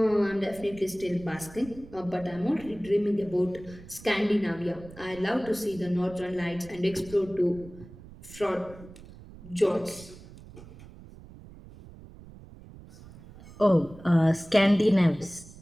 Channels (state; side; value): noise; right; rumble, 18 dB below the sound